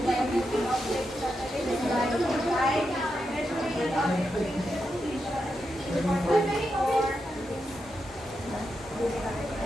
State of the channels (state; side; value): normal; both; correlation 0.86